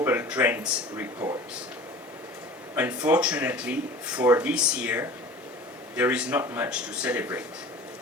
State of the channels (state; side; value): normal; both; correlation 0.41